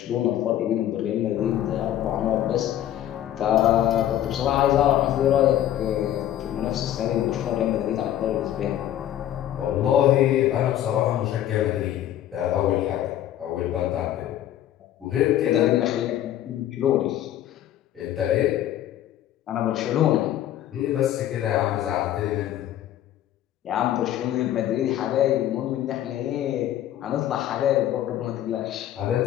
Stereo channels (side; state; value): right; quieter; 12.0 dB